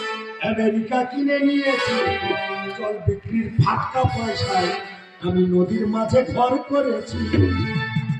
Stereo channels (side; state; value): both; identical; correlation 1.00